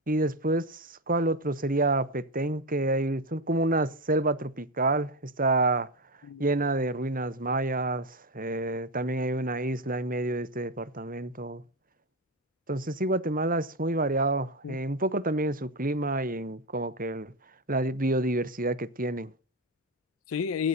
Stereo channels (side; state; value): both; normal; correlation 0.12